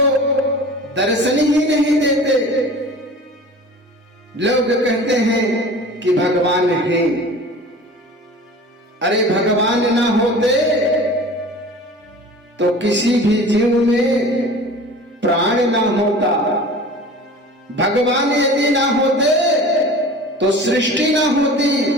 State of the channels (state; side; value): normal; both; correlation 0.40